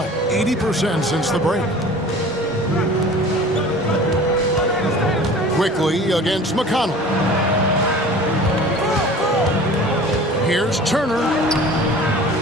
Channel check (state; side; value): normal; both; correlation 0.43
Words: 80% since the break. Quickly against McConnell. Here's Turner.